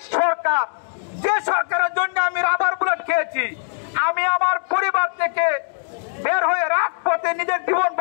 সরকার, যে সরকারের জন্য আমি রাবার বুলেট খেয়েছি, আমি আমার পরিবার থেকে বের হয়ে রাজপথে নিজের জীবন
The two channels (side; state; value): right; silent; digital silence